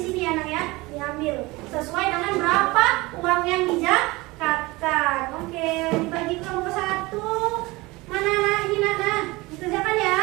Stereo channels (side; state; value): left; quieter; 22.1 dB